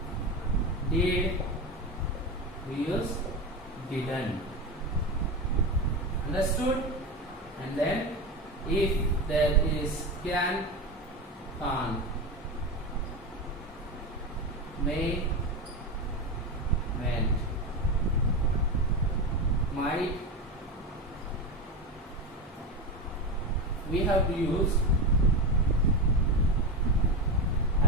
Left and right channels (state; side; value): normal; both; correlation 0.19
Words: did, we use didn't. Understood? And then if there is can, can't, may, meant, might, we have to use